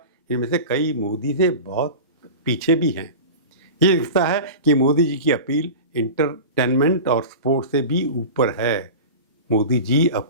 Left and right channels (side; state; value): both; inverted; correlation -0.31